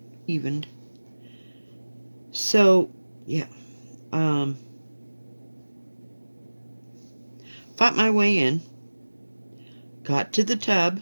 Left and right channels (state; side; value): inverted; both; correlation -1.00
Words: evened. So, yeah. Fought my way in. Got to the tub.